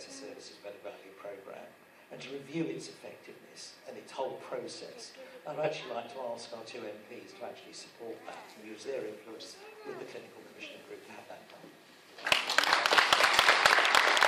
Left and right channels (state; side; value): identical; both; correlation 1.00